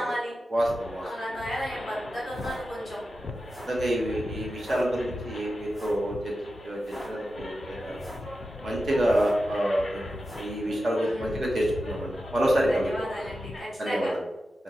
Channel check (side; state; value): both; normal; correlation 0.91